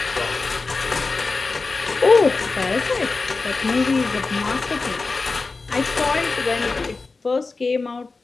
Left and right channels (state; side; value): quieter; right; 3.9 dB